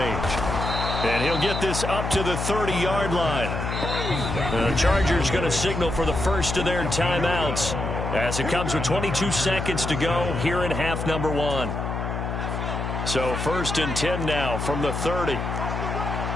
And he'll get this up to the 30-yard line. The Chargers going to signal for the first of their timeouts, as it comes with 22 seconds to go here in half number 1. So 1st and 10 now from the 30.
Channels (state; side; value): noise; left; hum, 3 dB below the sound